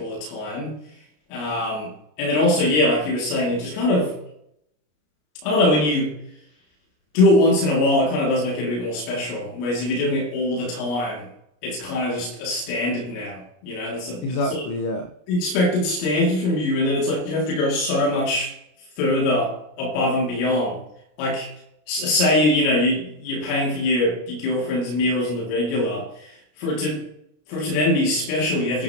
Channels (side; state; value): right; late; 33 ms